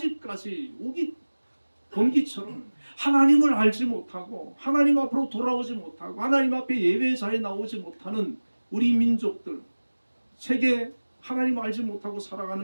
우기 건기처럼 하나님을 알지 못하고 하나님 앞으로 돌아오지 못하고 하나님 앞에 예배자에 나오지 못하는 우리 민족들, 세계 하나님을 알지 못하고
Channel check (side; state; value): both; inverted; correlation -1.00